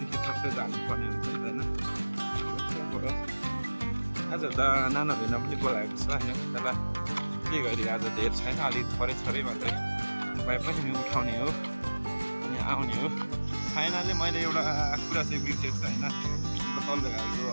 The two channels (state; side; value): inverted; both; correlation -1.00